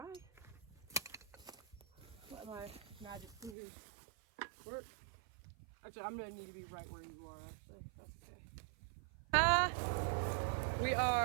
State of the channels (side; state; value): left; drops out; at 3.6 s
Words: Let my magic fingers work. Actually, I'm going to need to be right where you are, actually. That's okay. We